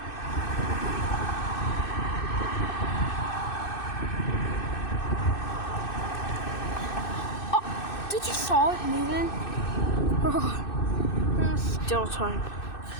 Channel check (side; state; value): right; late; 2.6 ms